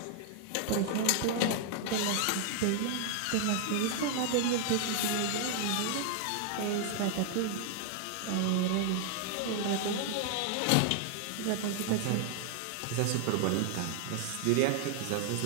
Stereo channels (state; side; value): different; both; correlation 0.00